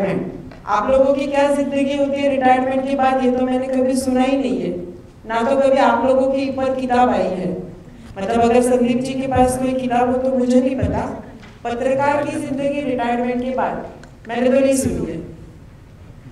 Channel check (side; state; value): both; identical; correlation 1.00